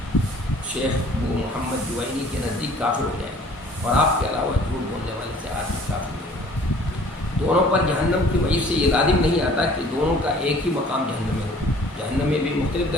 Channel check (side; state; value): both; normal; correlation 0.52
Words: شیخ ابو محمد جوینی کے نزدیک کافر ہو جائے، اور آپ کے علاوہ جھوٹ بولنے والے سے آدمی کافر ہو جائے. دونوں پر جہنم کی وجہ سے یہ لازم نہیں آتا کہ دونوں کا ایک ہی مقام جہنم میں ہو. جہنم میں بھی مختلف